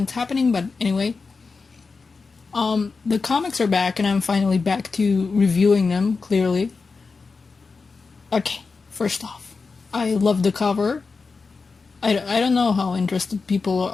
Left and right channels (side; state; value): right; quieter; 4.5 dB